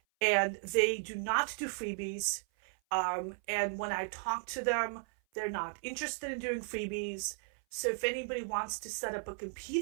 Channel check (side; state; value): left; silent; 54 dB below the other